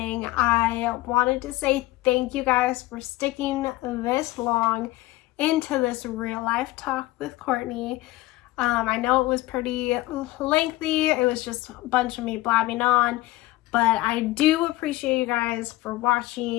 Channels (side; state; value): right; quieter; 18.4 dB